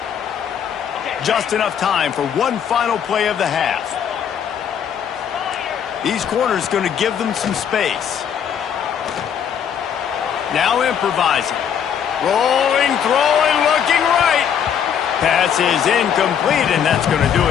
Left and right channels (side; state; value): right; quieter; 8.3 dB